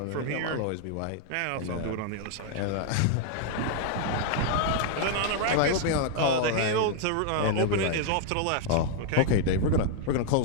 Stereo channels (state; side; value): different; both; correlation 0.00